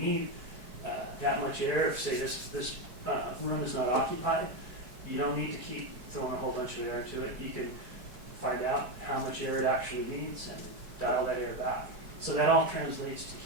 that much air, if say this room is not occupied, you don't need to keep throwing a whole bunch of air into it. You can find out how much air it actually needs and dial that air back. So that all translates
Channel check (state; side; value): late; left; 4.6 ms